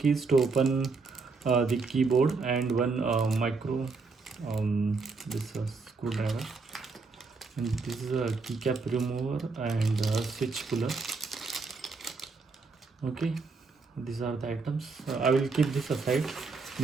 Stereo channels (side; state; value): left; quieter; 4.3 dB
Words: to open the keyboard, and one micro this screwdriver, and this is a keycap remover and switch puller. Okay, these are the items. I will keep this aside